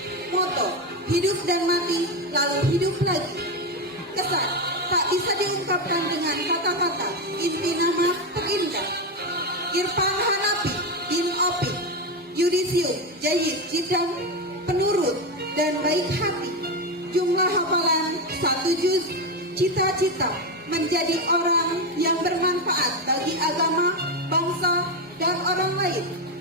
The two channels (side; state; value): both; normal; correlation 0.12